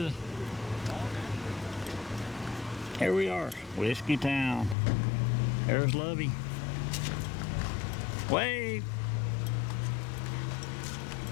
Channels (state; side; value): drops out; right; at 4.8 s